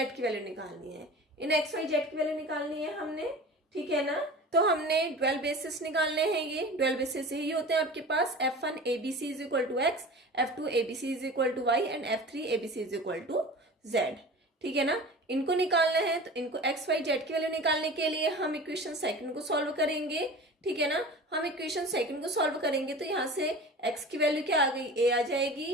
की वैल्यू निकालनी है। इन एक्स वाई जेड की वैल्यू निकालनी है हमने, ठीक है ना। तो हमने डुअल बेसिस निकालने हैं, ये डुअल बेसिस यही होते हैं आपके पास F1 ABC is equal to x, F2 ABC is equal to y and F3 ABC is equal to z, ठीक है ना। इनको निकालना है तो इनको एक्स वाई जेड की वैल्यू निकालने के लिए हम इक्वेशन सेकंड को सॉल्व करेंगे, ठीक है ना। हम इक्वेशन सेकंड को सॉल्व करेंगे तो यहाँ से एक्स की वैल्यू क्या आ गई, a आ जाएगी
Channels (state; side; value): normal; both; correlation 0.37